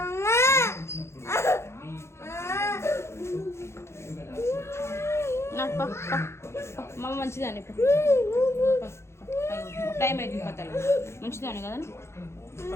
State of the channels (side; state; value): right; late; 0.13 ms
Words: మమ్మ మంచిదాన్ని టైం అవుతుంది పత్తలు మంచిదాన్ని కదా